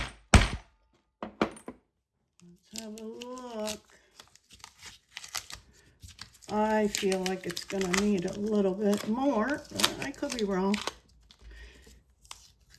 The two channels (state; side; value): identical; both; correlation 1.00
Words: Let's have a look. I feel like it's going to need a little bit more, but I could be wrong.